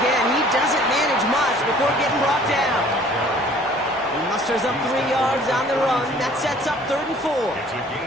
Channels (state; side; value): normal; both; correlation 0.53